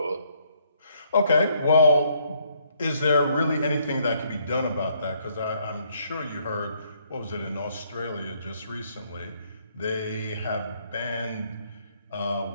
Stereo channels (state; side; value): inverted; both; correlation -0.69